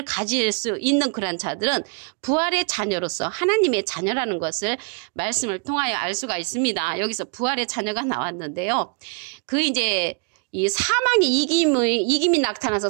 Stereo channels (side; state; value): left; quieter; 37.3 dB